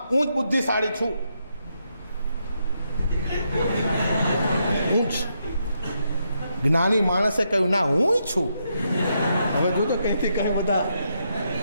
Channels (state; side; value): inverted; both; correlation -0.80